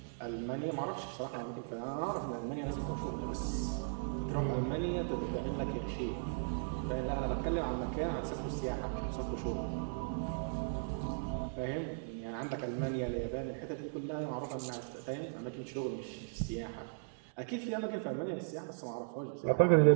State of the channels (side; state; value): left; silent; digital silence